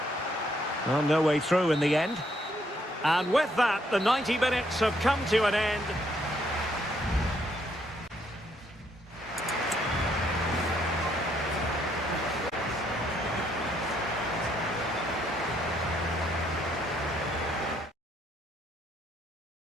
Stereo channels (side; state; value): both; normal; correlation 0.71